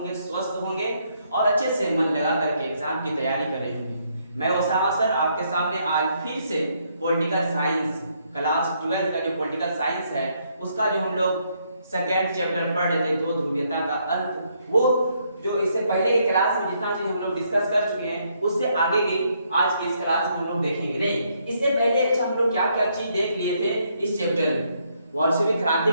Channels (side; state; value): both; inverted; correlation -0.73